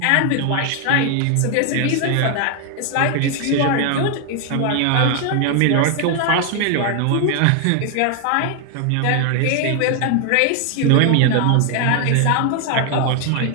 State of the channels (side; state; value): both; different; correlation 0.00